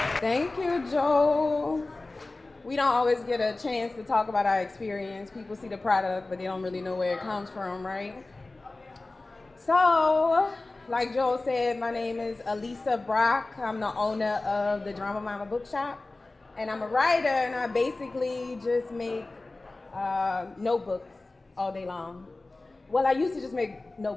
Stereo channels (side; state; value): right; quieter; 3.1 dB